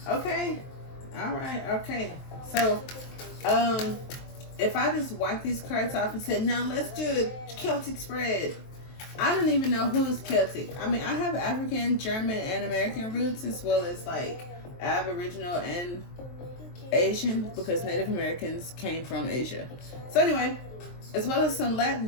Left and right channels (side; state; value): right; late; 23 ms